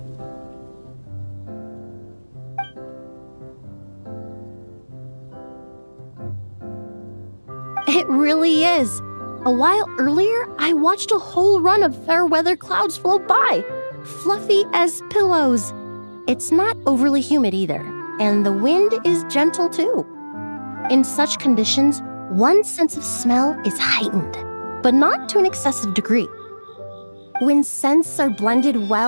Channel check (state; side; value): inverted; both; correlation -1.00